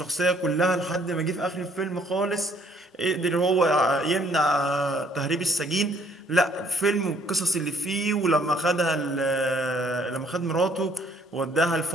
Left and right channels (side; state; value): both; normal; correlation 0.62